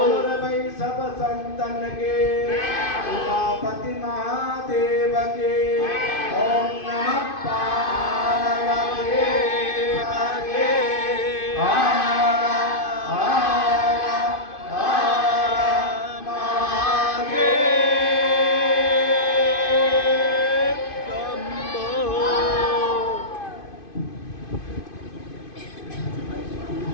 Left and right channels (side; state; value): right; late; 2.5 ms